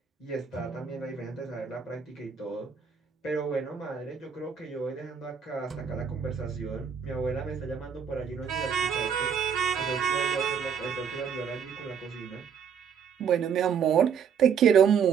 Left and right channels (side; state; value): left; quieter; 7.1 dB